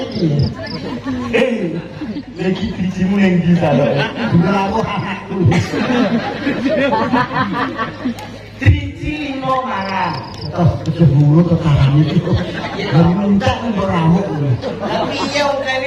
Lagi bijimu yang bisa loh. Melaku anakku. Biji 5 mangan. Oh, keceburu ke kanan itu. Dari minta beramuk. Tapi iya udah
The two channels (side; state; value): both; identical; correlation 1.00